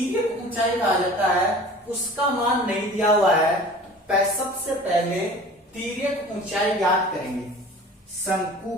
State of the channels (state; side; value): normal; both; correlation 0.43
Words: ऊंचाई कहा जाता है, उसका मान नहीं दिया हुआ है। सबसे पहले तिर्यक ऊंचाई ज्ञात करेंगे। शंकु